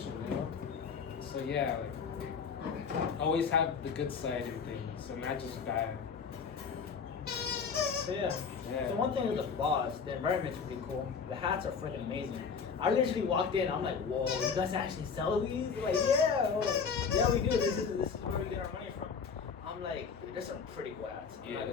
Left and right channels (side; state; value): right; quieter; 5.9 dB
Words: you know? So yeah, like always have the good side in things, so not just bad. So yeah. So one thing with the boss, the environment's pretty cool. The hats are freaking amazing. I literally walked in, I'm like, whoa, you guys actually sell these? They're like, yeah. I'm like, yeah, we do. This is where we get our money from. I'm like, there's some pretty cool hats. I'm not